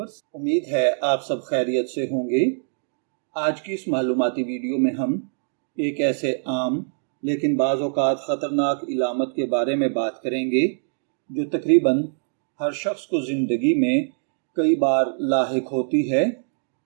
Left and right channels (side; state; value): left; silent; digital silence